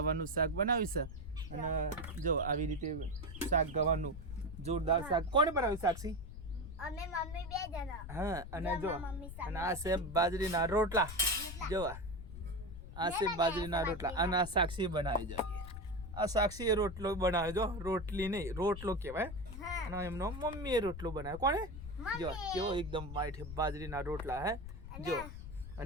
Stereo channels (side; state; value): left; noise; rumble, 10 dB below the sound